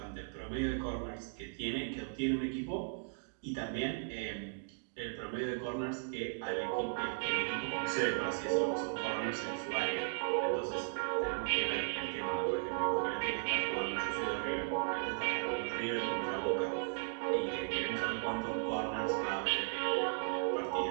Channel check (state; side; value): silent; left; digital silence